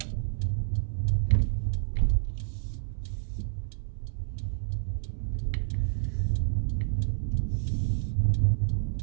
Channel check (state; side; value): silent; left; 59 dB below the other